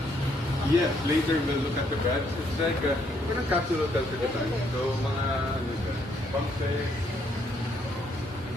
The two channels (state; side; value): normal; both; correlation 0.71